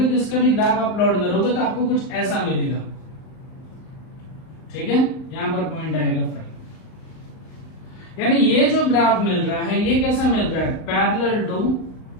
तो इसका भी ग्राफ आप प्लॉट करोगे तो आपको कुछ ऐसा मिलेगा, ठीक है। यहां पर पॉइंट आएगा 5, यानी ये जो ग्राफ मिल रहा है ये कैसा मिल रहा है पैरेलल टू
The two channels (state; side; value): late; right; 39 ms